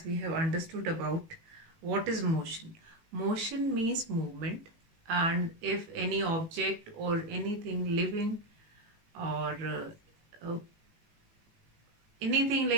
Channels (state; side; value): late; left; 18 ms